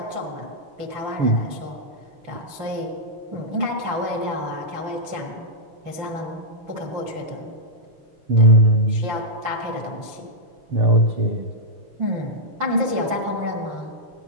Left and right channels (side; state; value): left; late; 5.9 ms